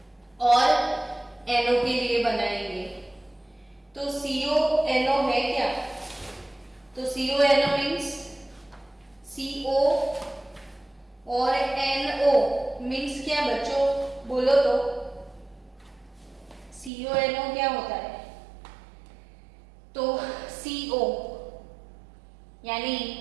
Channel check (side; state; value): left; drops out; at 16.9 s